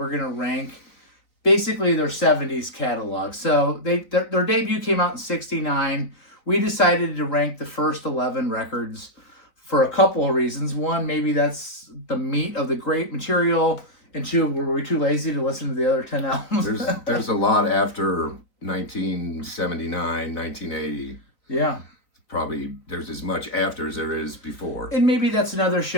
going to rank basically their 70s catalog. So their debut came out in 69. We decided to rank the first 11 records for a couple of reasons. One, maybe that's the meat of the great material. And two, were we too lazy to listen to the other 10 albums? There's a lot after 1979, 1980. Yeah. Probably there's as much after as there is before. And maybe that's another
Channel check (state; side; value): late; right; 4.1 ms